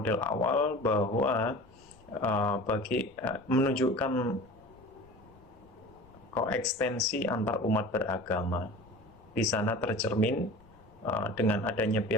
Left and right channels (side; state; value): left; noise; rumble, 27 dB below the sound